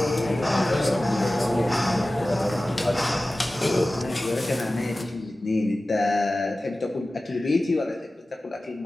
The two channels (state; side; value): normal; both; correlation 0.96